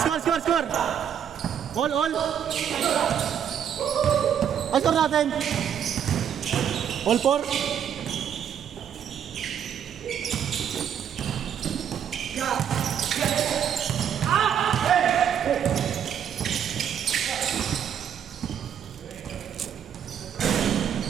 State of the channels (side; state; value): left; quieter; 8.8 dB